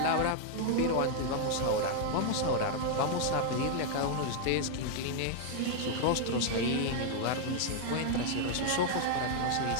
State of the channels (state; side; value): different; both; correlation 0.00